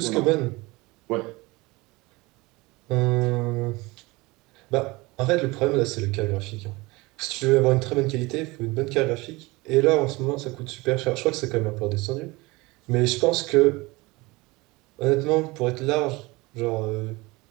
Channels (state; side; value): quieter; left; 22.9 dB